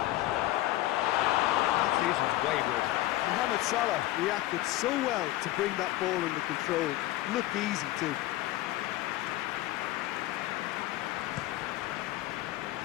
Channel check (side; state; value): right; quieter; 16.3 dB